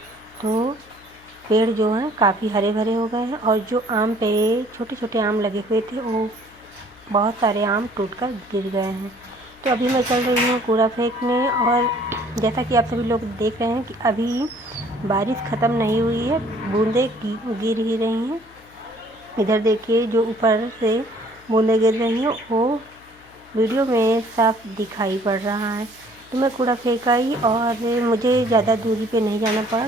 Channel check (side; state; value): left; noise; hum, 27 dB below the sound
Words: तो पेड़ जो हैं काफ़ी हरे भरे हो गए हैं। और जो आम पे छोटे छोटे आम लगे हुए थे वो बहुत सारे आम टूटकर गिर गए हैं। तो अभी मैं चल रही हूँ कूड़ा फेंकने। और जैसा कि आप सभी लोग देख रहे हैं कि अभी बारिश ख़त्म नहीं हुई है, बूंदें गिर ही रही हैं। इधर देखिए जो ऊपर से बूंदें गिर रही हैं वो वीडियो में साफ दिखाई पड़ रहा है। तो मैं कूड़ा फेंक आई और मुझे ज़्यादा दूरी पे नहीं जाना पड़ा